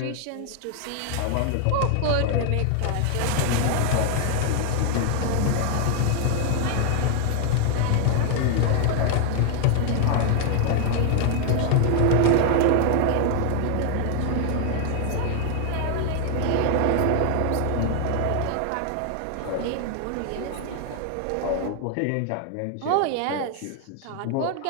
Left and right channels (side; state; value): both; different; correlation 0.00